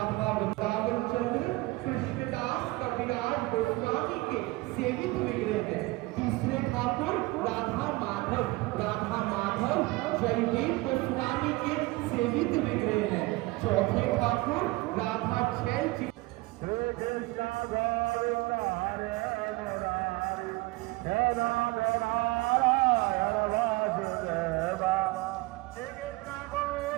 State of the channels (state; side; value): quieter; left; 21.9 dB